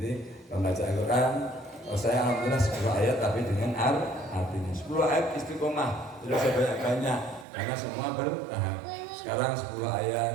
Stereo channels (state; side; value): drops out; left; at 7.5 s